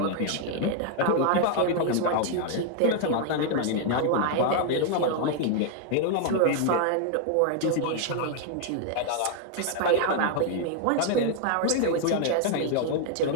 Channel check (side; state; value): both; different; correlation 0.00